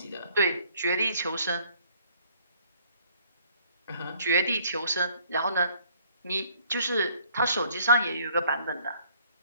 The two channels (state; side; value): inverted; both; correlation -0.61